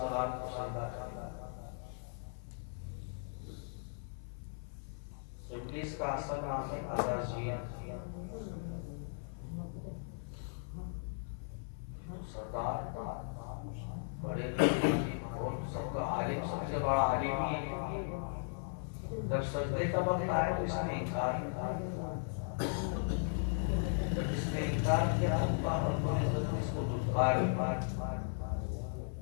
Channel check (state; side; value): silent; right; 53 dB below the other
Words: کریں۔ ابلیس کا اصل نام ہے عزازیل، سردار بڑے اور سب کا عالم، سب سے بڑا عالم ہی ہے۔ جب سجدے کا وقت آیا تو اس نے انکار کیا، جب اس نے انکار کیا تو اللہ رب العزت نے اس کو دھتکار